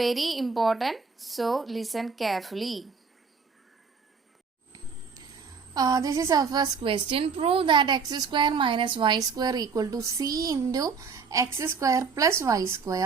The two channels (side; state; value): left; quieter; 5.4 dB